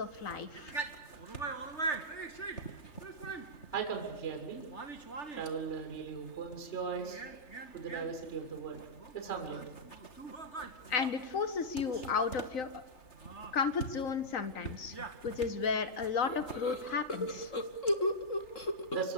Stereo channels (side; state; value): right; late; 3.3 ms